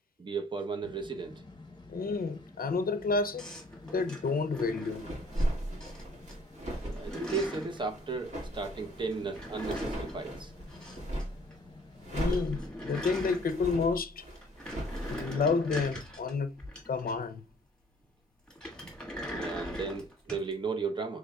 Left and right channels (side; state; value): both; normal; correlation 0.57